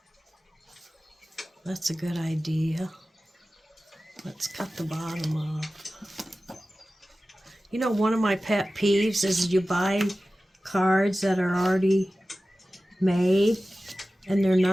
That's a good idea. Let's cut the bottom off. You know, one of my pet peeves is you buy cards that are already made and they're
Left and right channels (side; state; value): both; normal; correlation 0.95